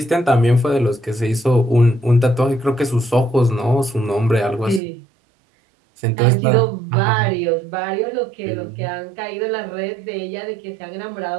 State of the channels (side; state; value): left; drops out; at 4.8 s